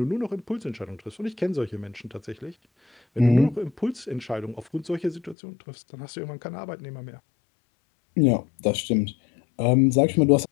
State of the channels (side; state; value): right; drops out; at 5.4 s